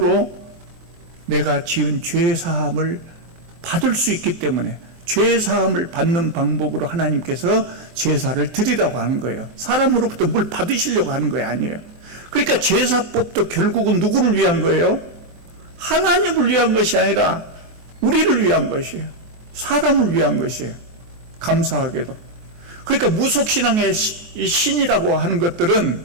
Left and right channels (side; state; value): left; late; 23 ms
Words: 내가 지은 죄 사함을 받을 수 있기 때문에 죄 사함을 받는 방법으로 하나님께서 제사를 드리라고 하는 거예요. 사람으로부터 뭘 받으시려고 하는 거 아니에요. 그러니까 제사법도 결국은 누구를 위한 거예요? 하나님을 위한 것이 아니라 우리를 위한 것이에요. 사람을 위한 것이에요. 감사하게도. 그러니까 무속신앙의 신이라고 하는 것들은